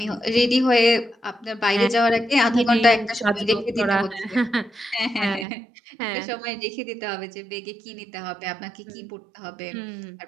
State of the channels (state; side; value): drops out; left; at 5.5 s